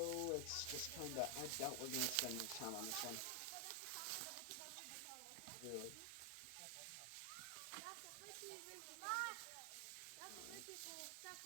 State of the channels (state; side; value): different; both; correlation 0.00